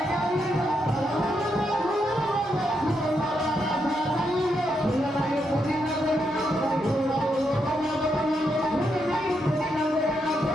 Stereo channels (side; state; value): both; normal; correlation 0.81